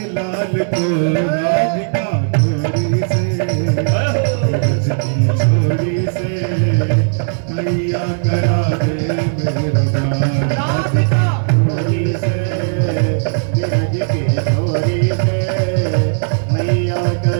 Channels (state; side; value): silent; left; 63 dB below the other